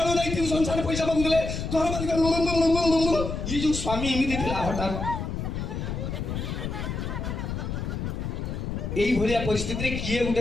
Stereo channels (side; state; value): left; noise; rumble, 4 dB below the sound